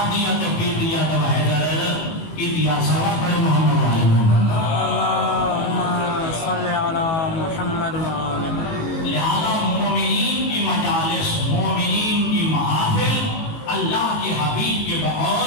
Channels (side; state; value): right; late; 18 ms